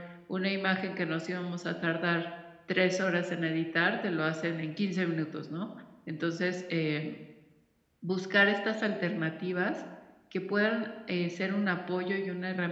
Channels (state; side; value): identical; both; correlation 1.00